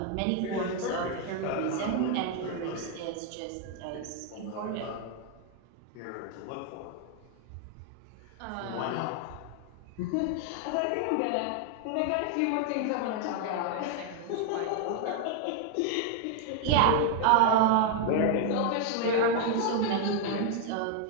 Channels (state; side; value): different; both; correlation 0.00